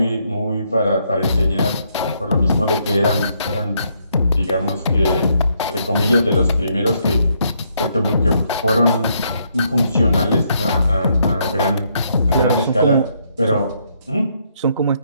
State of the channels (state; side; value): inverted; both; correlation -0.73